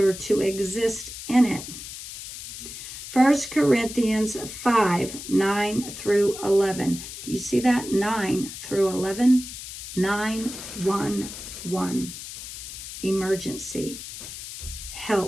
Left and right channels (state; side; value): noise; left; hiss, 10 dB below the sound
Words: to exist in it. 1 Corinthians 5, 9 through 11. Do you see that? 9 through 11. 911. Emergency.